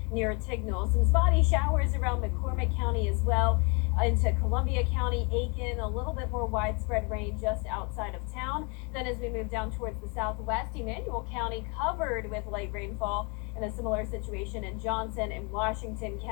near Tignall. Some spotty showers around McCormick County as well. Into Columbia County, Aiken, a little bit more widespread rain just outside of town. Then as we move down towards the southwest, Emmanuel County covered with light rainfall, and a similar situation in Johnson and Washington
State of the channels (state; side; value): quieter; right; 32.5 dB